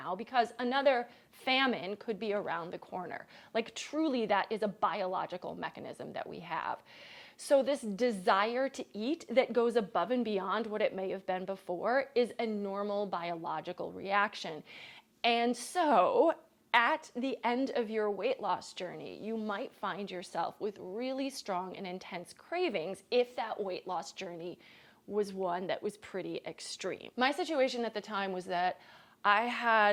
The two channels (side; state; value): both; identical; correlation 1.00